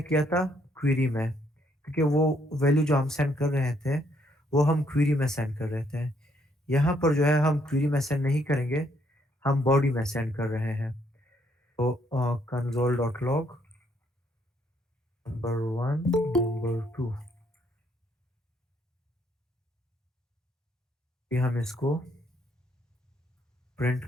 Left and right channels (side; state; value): both; normal; correlation 0.70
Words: किया था क्वेरी में, क्योंकि वो वैल्यू जो हम सेंड कर रहे थे, वो हम क्वेरी में सेंड कर रहे थे। यहाँ पर जो है हम क्वेरी में सेंड नहीं करेंगे, हम बॉडी में सेंड कर रहे हैं। तो console.log नंबर 1, नंबर 2 ये हम इसको प्रिंट